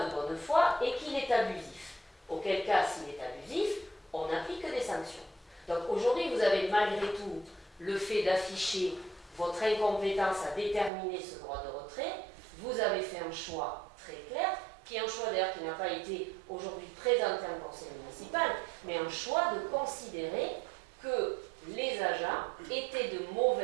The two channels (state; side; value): drops out; left; at 10.9 s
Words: de bonne foi et qu'il est abusif. Auquel cas, s'il est abusif, on n'applique que des sanctions. Donc aujourd'hui, vous avez malgré tout le fait d'afficher votre incompétence à déterminer ce droit de retrait. Vous avez fait un choix très clair, qui est un choix d'ailleurs qui n'a pas été aujourd'hui présenté en conseil municipal, mais un choix de considérer que les agents étaient de